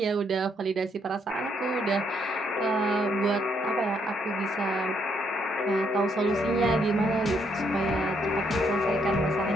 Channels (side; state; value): both; normal; correlation 0.72